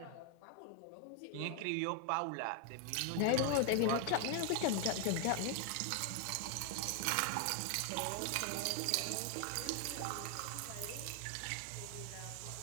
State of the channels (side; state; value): both; different; correlation 0.00